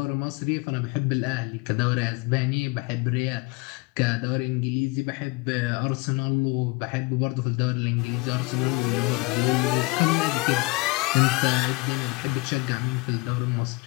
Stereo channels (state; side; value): quieter; right; 24.0 dB